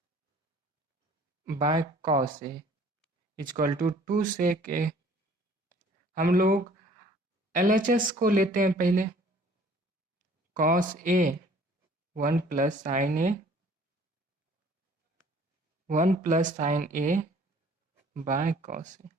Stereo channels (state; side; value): normal; both; correlation 0.54